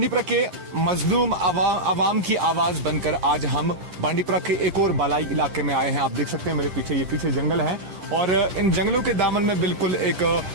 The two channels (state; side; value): late; left; 10 ms